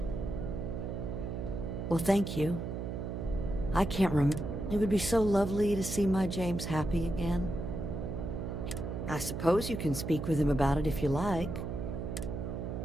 Well, thank you. I can't remember. It would be so lovely to see my James happy again. I suppose you can speak with him about it if you like.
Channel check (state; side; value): noise; right; hum, 4 dB below the sound